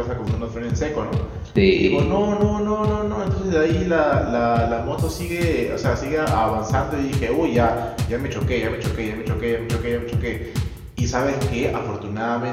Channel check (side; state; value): both; identical; correlation 1.00